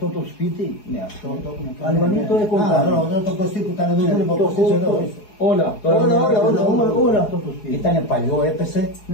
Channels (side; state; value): right; late; 4.8 ms